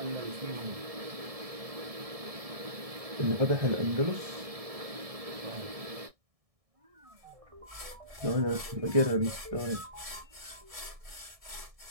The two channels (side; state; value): left; late; 1.6 ms